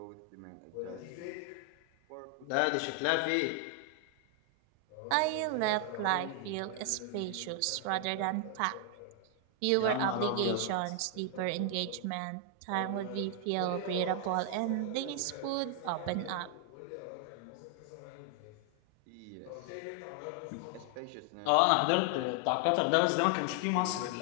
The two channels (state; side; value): different; both; correlation 0.00